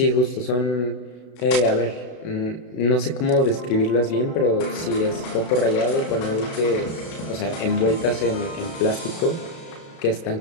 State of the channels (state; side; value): late; right; 32 ms